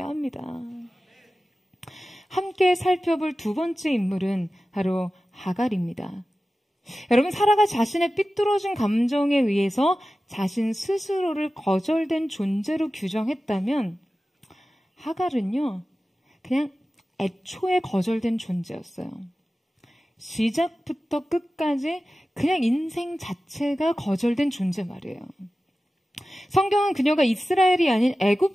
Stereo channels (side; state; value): both; normal; correlation 0.95